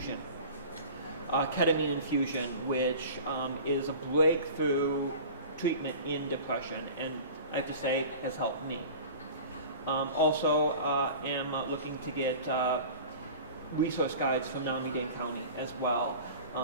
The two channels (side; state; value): both; inverted; correlation -0.39